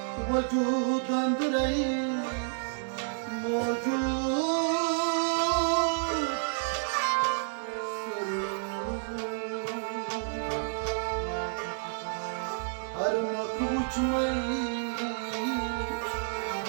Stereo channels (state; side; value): silent; left; 58 dB below the other